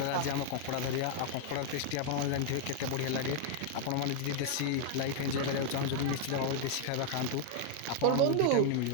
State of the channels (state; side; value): different; both; correlation 0.00